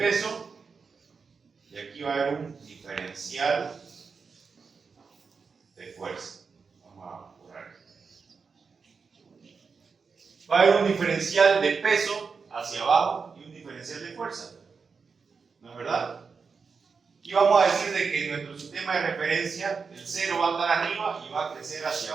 y aquí va a haber un diferencial de fuerza. Vamos a borrar esto. Va a haber un diferencial de peso hacia abajo y un diferencial de fuerza. ¿No es verdad? Y vamos a decir de que nuestro sistema de referencia, el cero va a estar arriba y va a crecer hacia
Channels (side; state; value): left; quieter; 5.2 dB